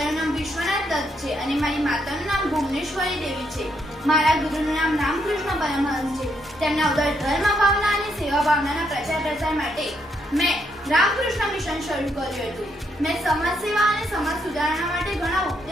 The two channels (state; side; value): normal; both; correlation 0.75